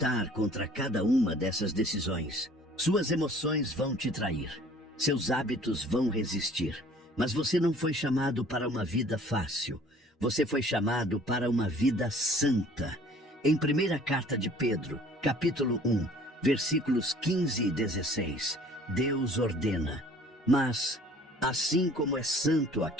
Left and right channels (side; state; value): both; normal; correlation 0.52